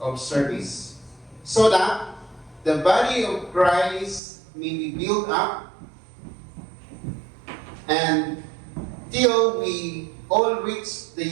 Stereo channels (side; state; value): left; drops out; at 4.2 s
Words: of service, so that the body of Christ may be built up and till we all reach the